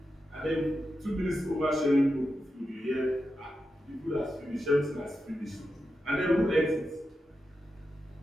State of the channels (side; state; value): both; normal; correlation 0.89